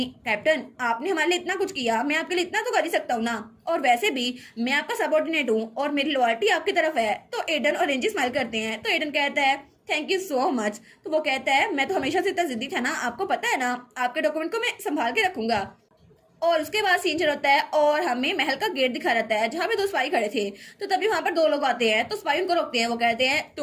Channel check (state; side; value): identical; both; correlation 1.00